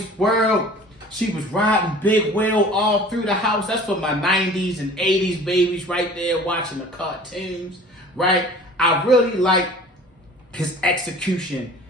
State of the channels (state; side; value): normal; both; correlation 0.45